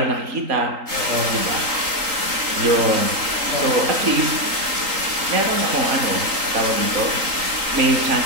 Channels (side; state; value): left; late; 3.8 ms